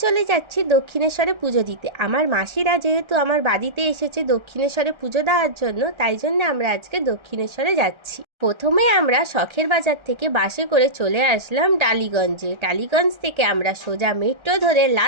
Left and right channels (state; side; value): late; left; 1.3 ms